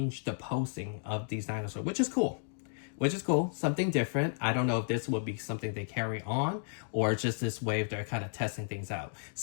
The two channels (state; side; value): silent; right; digital silence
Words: the posing of these dinosaurs, which is cool. Something different. I don't know if this would be something they carry on or just this wave they're kind of testing things out.